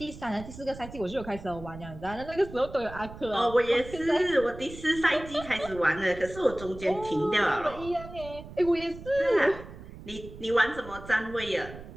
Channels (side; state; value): right; noise; rumble, 14 dB below the sound